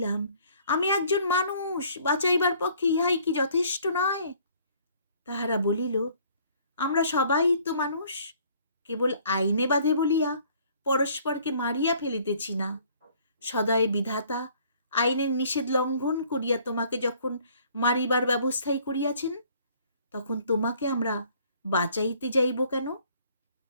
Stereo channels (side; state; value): both; inverted; correlation -0.58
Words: আমি একজন মানুষ, বাঁচাইবার পক্ষে ইহাই কি যথেষ্ট নয়? তাহারা বলিল, আমরা সবাই তো মানুষ, কেবল আইনে বাঁধে বলিয়া পরস্পরকে মারিয়া ফেলিতেছি না। সদয় বিধাতা আইনের নিষেধ লঙ্ঘন করিয়া তোমাকে যখন মারিবার ব্যবস্থাই করিয়াছেন, তখন তোমাকে আমরা বাঁচাইতে যাইব কেন?